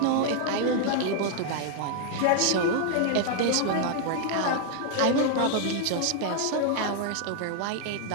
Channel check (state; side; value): different; both; correlation 0.00